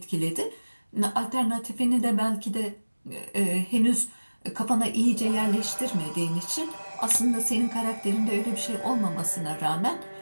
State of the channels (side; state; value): both; inverted; correlation -1.00